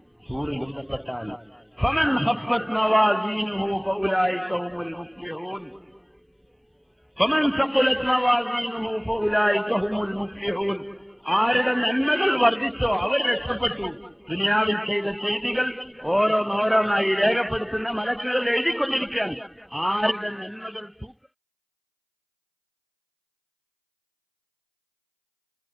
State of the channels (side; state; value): both; identical; correlation 1.00